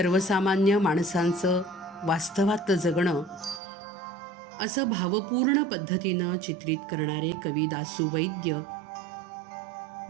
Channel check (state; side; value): drops out; left; at 3.6 s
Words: माणसांचं वास्तवात जगणं असं भावपूर्ण पद्धतीनं चित्रित करणारे कवी दासू वैद्य.